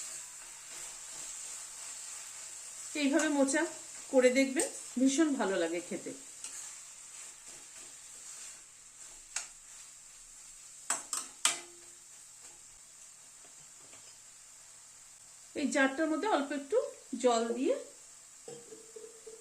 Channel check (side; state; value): both; identical; correlation 1.00